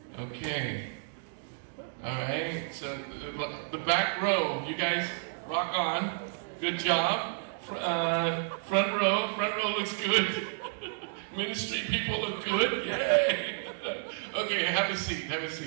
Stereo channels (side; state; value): left; silent; digital silence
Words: Okay. Alright, so the back row, you guys rock on. Good job. Front row looks good. Ministry people look good. Yay! Okay, have a seat,